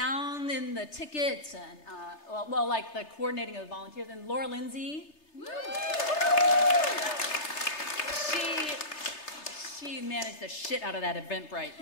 and the tickets and like the coordinating of the volunteers. And Laura Lindsay. She managed the shit out of that Eventbrite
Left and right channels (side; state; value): right; late; 3.3 ms